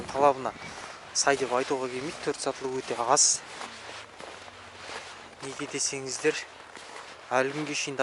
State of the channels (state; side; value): identical; both; correlation 1.00